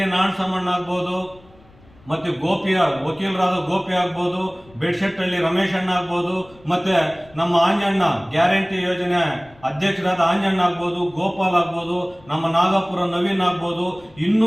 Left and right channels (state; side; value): noise; left; rumble, 27 dB below the sound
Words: ನಾಣಸಮಣ್ಣ ಆಗ್ಬೋದು, ಮತ್ತೆ ವಕೀಲರಾದ ಗೋಪಿ ಆಗ್ಬೋದು, ಬೆಡ್ಶೆಟ್ಟಳ್ಳಿ ರಮೇಶ್ ಅಣ್ಣ ಆಗ್ಬೋದು, ಮತ್ತೆ ನಮ್ಮ ಆಂಜಣ್ಣ ಗ್ಯಾರಂಟಿ ಯೋಜನೆ ಅಧ್ಯಕ್ಷರಾದ ಆಂಜಣ್ಣ ಆಗ್ಬೋದು, ಗೋಪಾಲ್ ಆಗ್ಬೋದು, ನಮ್ಮ ನಾಗಪುರ ನವೀನ್ ಆಗ್ಬೋದು, ಇನ್ನೂ